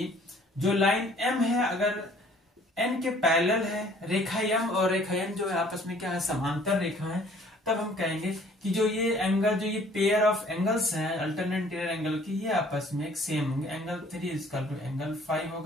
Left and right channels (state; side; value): normal; both; correlation 0.56